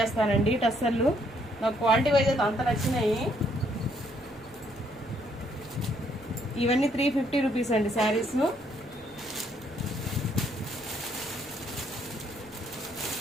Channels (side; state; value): right; noise; rumble, 26 dB below the sound